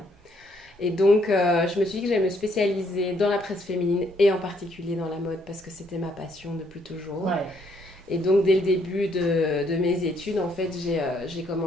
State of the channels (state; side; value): normal; both; correlation 0.70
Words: Et donc, je me suis dit que j'allais me spécialiser dans la presse féminine et en particulier dans la mode parce que c'était ma passion depuis toujours. Ouais. Et donc, dès le début de mes études, en fait, j'ai